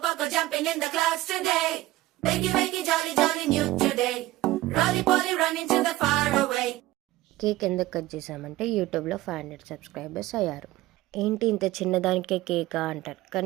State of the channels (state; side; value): quieter; left; 16.8 dB